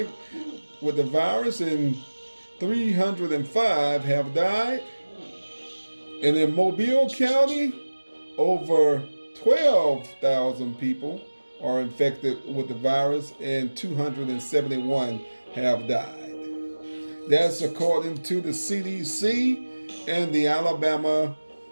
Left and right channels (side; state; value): both; inverted; correlation -1.00